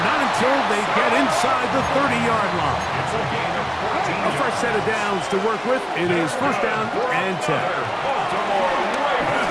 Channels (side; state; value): both; identical; correlation 1.00